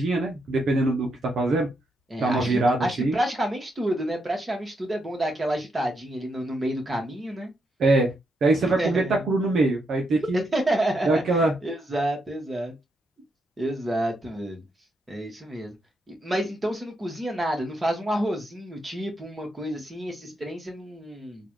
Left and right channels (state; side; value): normal; both; correlation 0.80